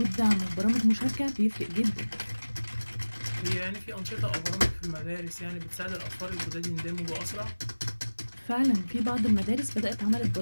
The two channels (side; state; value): both; inverted; correlation -1.00